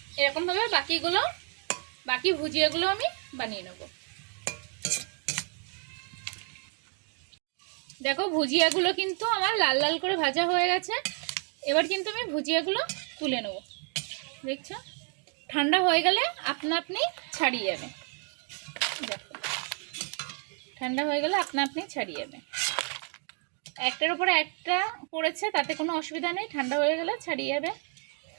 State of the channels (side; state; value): left; quieter; 39.9 dB